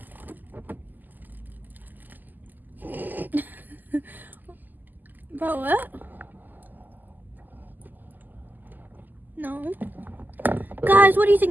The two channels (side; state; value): left; late; 0.086 ms